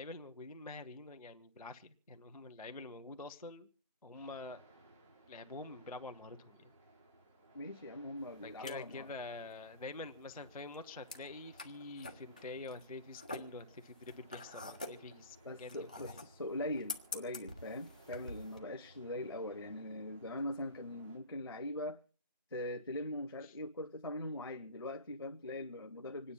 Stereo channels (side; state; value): both; inverted; correlation -0.37